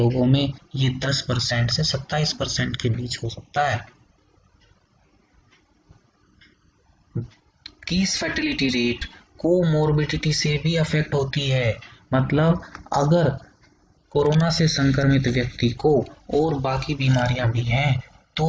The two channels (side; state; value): both; identical; correlation 1.00